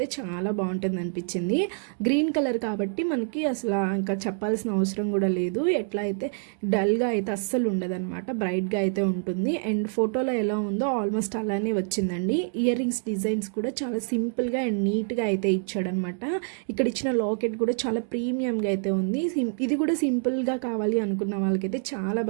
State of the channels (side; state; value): left; silent; 58 dB below the other